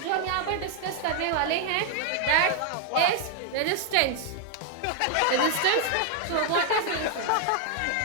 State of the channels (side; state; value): both; different; correlation 0.00